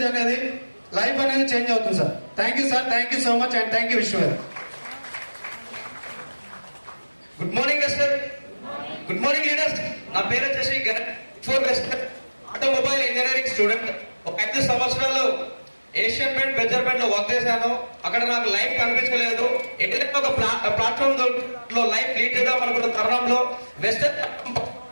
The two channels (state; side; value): inverted; both; correlation -1.00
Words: అనేది లైఫ్ అనేది చేంజ్ అవుతుంది sir. Thank you sir, thank you so much and thank you Vishwa. Good morning Vestige. Good morning leaders. నా పేరు వచ్చేసి ఫోర్ వెస్టర్, ఆటోమొబైల్ ఇంజనీరింగ్ స్టూడెంట్. ఒక 5 సంవత్సరాలు ఏషియన్ పెయింట్, బెజర్ పెయింట్ లో వర్క్ చేశాను. అక్కడ నాకు లైఫ్ కనిపించలేదు. ఎక్కడైనా ఒక ప్లాట్ఫామ్ లో లైఫ్ లీడ్ చేద్దాం అనుకున్న తరుణంలో వెస్టర్